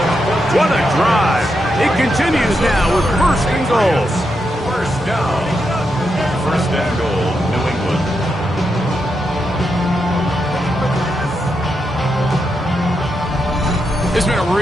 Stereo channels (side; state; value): both; normal; correlation 0.84